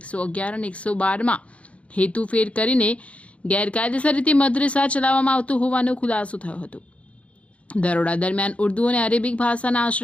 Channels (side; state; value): right; late; 0.063 ms